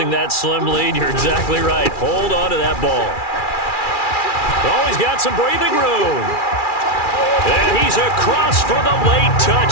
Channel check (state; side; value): late; right; 2.4 ms